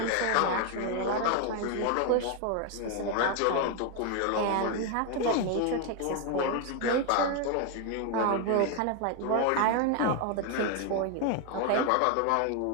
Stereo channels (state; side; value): different; both; correlation 0.01